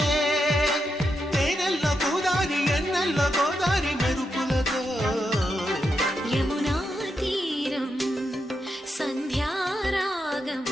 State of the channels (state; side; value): normal; both; correlation 0.84